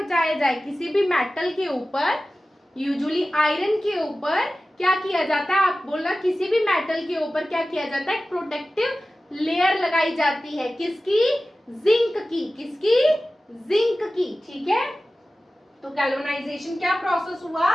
जाए, किसी भी मेटल के ऊपर, यूजुअली आयरन के ऊपर क्या किया जाता है, आप बोला किसी भी मेटल के ऊपर क्या किया जाता है, प्रोटेक्टिव लेयर लगाई जाती है, किसकी, जिंक की, किसकी, जिंक की, ठीक है। तो गैल्वेनाइजेशन क्या प्रोसेस हुआ,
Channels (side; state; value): both; normal; correlation 0.96